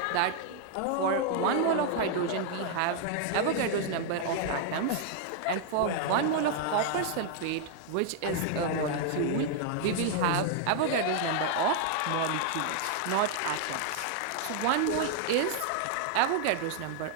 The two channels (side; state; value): both; different; correlation 0.00